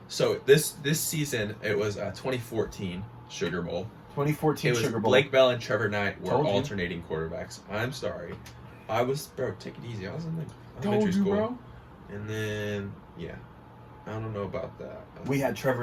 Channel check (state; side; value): identical; both; correlation 1.00